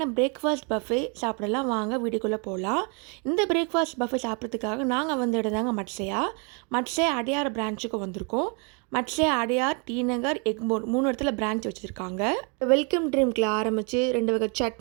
பிரேக்ஃபாஸ்ட் பஃபே சாப்பிடலாம். வாங்க வீடியோக்குள்ளே போகலாம். இந்த பிரேக்ஃபாஸ்ட் பஃபே சாப்பிட்றதுக்காக நாங்கள் வந்த இடம் தாங்க மட்சையா. மட்சையா அடையார் பிரான்ச்சுக்கு வந்திருக்கோம். மட்சையா, அடையார், டி நகர், எக்மோர் 3 இடத்துல பிரான்ச் வச்சுருக்காங்க. வெல்கம் ட்ரிங்க்கில் ஆரம்பித்து 2 வகை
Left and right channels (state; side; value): quieter; left; 35.3 dB